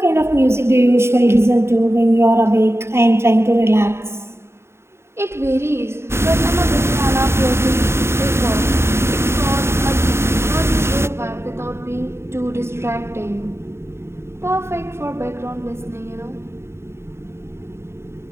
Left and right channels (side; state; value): left; late; 0.12 ms